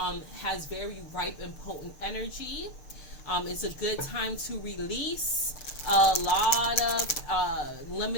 has very ripe and potent energy. It's a good time to release a lot of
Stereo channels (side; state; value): right; late; 6.6 ms